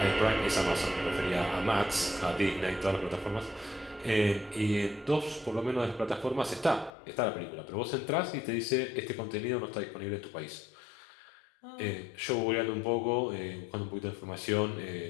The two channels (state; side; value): drops out; right; at 6.9 s